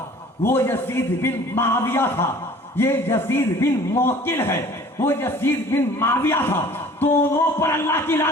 وہ یزید بن معاویہ تھا، یہ یزید بن معقل ہے، وہ یزید بن معاویہ تھا۔ دونوں پر اللہ کی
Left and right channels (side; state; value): both; normal; correlation 0.49